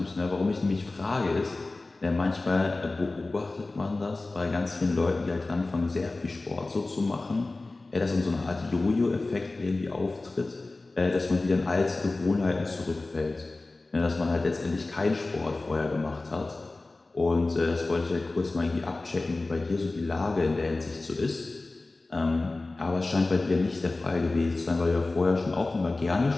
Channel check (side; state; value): right; quieter; 3.2 dB